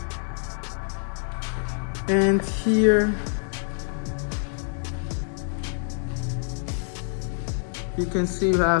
And here you can see you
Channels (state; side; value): silent; right; digital silence